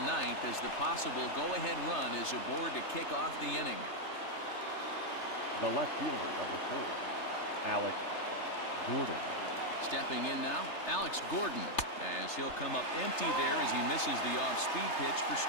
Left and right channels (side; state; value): right; late; 3.3 ms